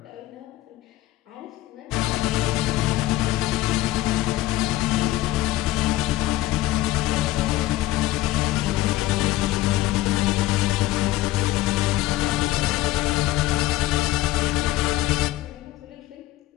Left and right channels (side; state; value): right; quieter; 16.2 dB